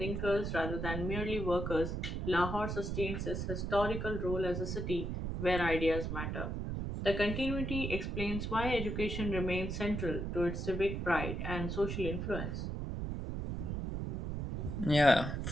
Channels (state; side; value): noise; right; rumble, 3 dB below the sound